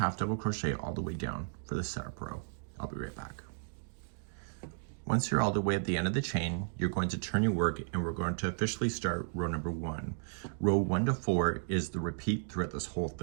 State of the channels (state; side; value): silent; left; digital silence